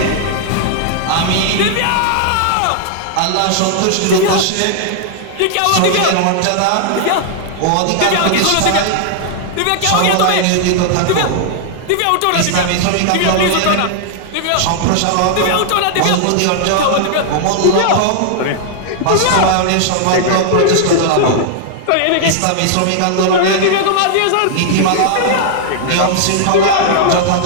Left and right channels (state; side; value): different; both; correlation -0.01